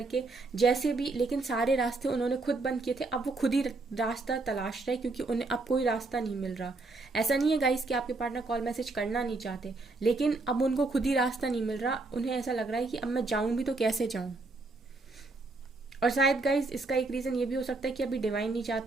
जैसे भी, लेकिन सारे रास्ते उन्होंने खुद बंद किए थे। अब वो खुद ही रास्ता तलाश रहे क्योंकि उन्हें अब कोई रास्ता नहीं मिल रहा। ऐसा नहीं है गाइस कि आपके पार्टनर कॉल मैसेज करना नहीं चाहते, लेकिन अब उनको खुद ही रास्ता नहीं मिल रहा, उन्हें ऐसा लग रहा है कि अब मैं जाऊं भी तो कैसे जाऊं। और शायद गाइज इसका एक रीज़न ये भी हो सकता है कि अभी डिवाइन नहीं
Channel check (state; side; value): quieter; left; 3.4 dB